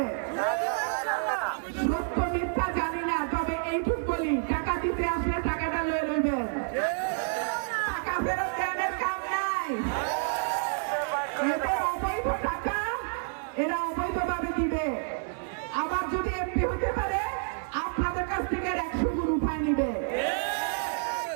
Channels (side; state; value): left; silent; 59 dB below the other